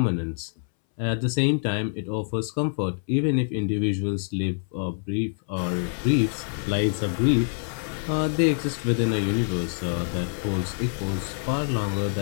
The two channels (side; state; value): right; silent; 61 dB below the other